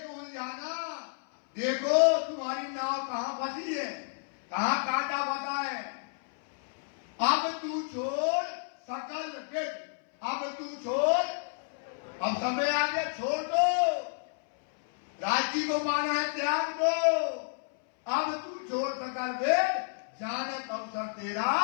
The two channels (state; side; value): silent; right; 57 dB below the other